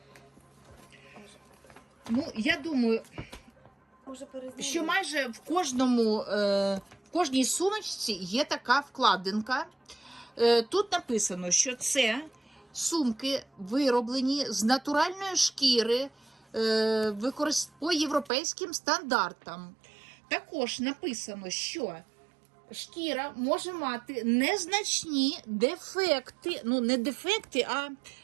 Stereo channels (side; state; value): left; drops out; at 18.3 s